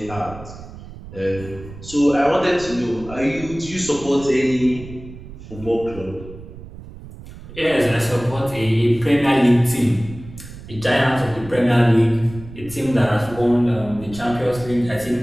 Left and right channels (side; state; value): right; noise; rumble, 15 dB below the sound